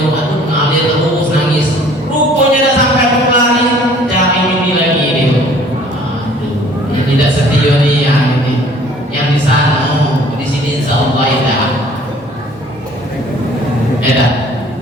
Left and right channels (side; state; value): both; normal; correlation 0.54